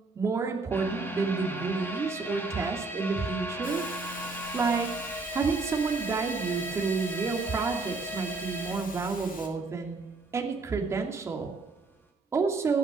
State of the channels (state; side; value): quieter; left; 3.8 dB